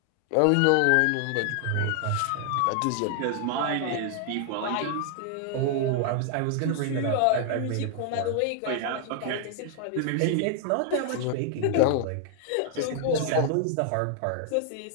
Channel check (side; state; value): both; different; correlation 0.00